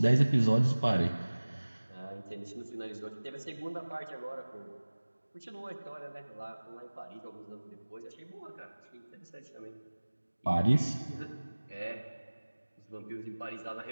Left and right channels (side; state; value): both; inverted; correlation -1.00